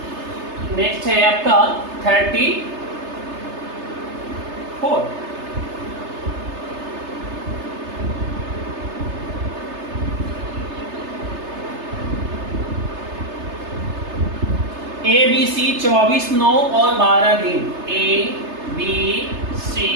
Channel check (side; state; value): left; late; 3.3 ms